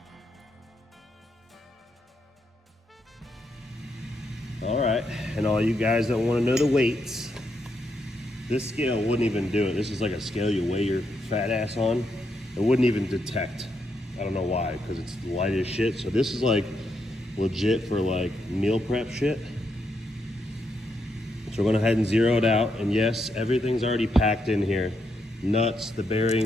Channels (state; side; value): normal; both; correlation 0.80